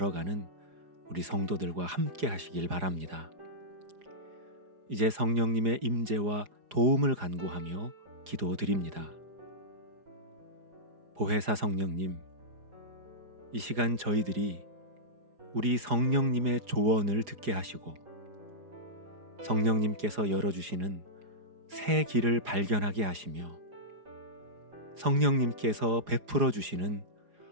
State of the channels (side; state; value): left; late; 4.9 ms